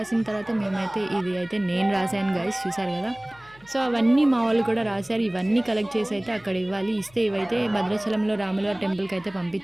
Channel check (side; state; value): left; noise; hum, 27 dB below the sound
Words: తర్వాత మేమైతే ఇది అయితే నేను రాశాను గైస్, చూసారు కదా. సో అవన్నీ మా వాళ్ళు కూడా రాశారు. ఇవన్నీ కలెక్ట్ చేసి అయితే అక్కడ ఇవ్వాలి. ఇస్తే ఇవైతే భద్రాచలంలో రాములవారి టెంపుల్కి అయితే